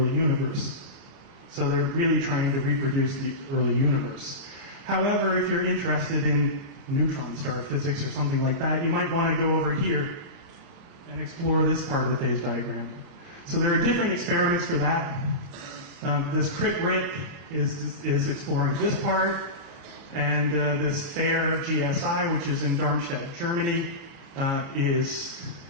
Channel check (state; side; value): late; left; 29 ms